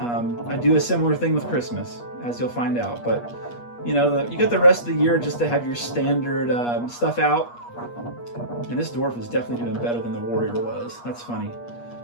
do a similar thing with Christmas, as you'll find out, but you got the rest of the year just to have your standard stuff out. And this dwarf is definitely doing better than the warrior was. That's funny.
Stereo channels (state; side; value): late; right; 8.4 ms